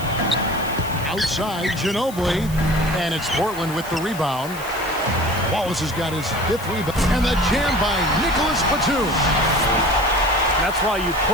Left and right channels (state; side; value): noise; left; hiss, 16 dB below the sound